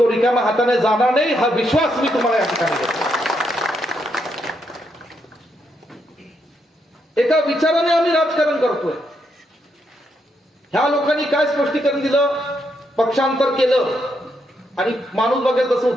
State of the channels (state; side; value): normal; both; correlation 0.79